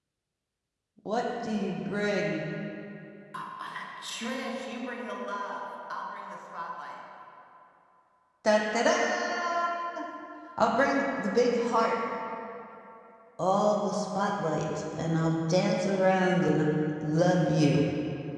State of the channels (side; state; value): both; identical; correlation 1.00